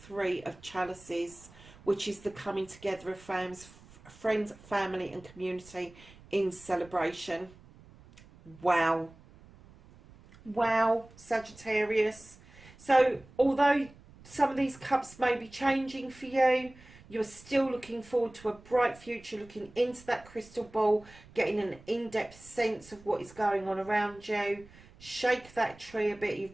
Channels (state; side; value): noise; right; rumble, 23 dB below the sound